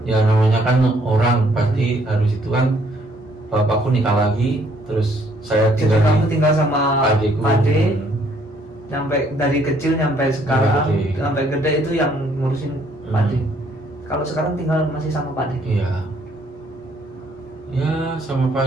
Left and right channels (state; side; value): normal; both; correlation 0.66